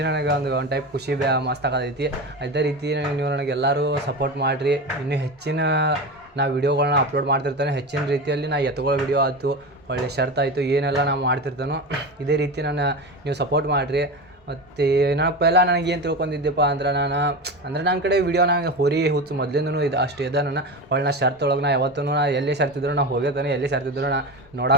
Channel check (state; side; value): normal; both; correlation 0.24